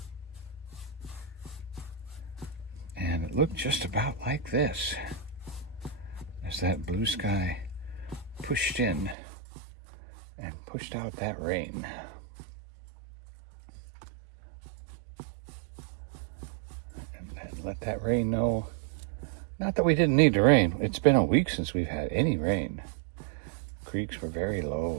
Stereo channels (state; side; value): drops out; left; at 9.2 s